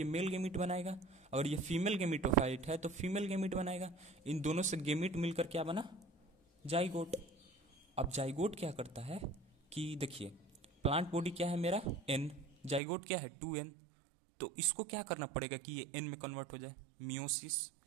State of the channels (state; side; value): drops out; left; at 12.8 s